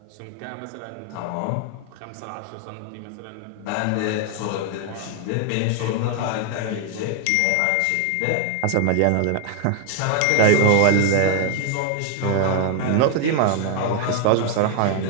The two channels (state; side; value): different; both; correlation 0.00